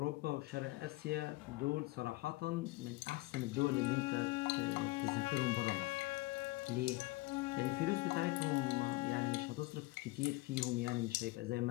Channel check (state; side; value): quieter; right; 21.3 dB